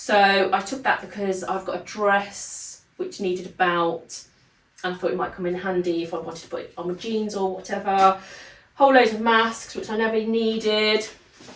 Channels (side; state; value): both; identical; correlation 1.00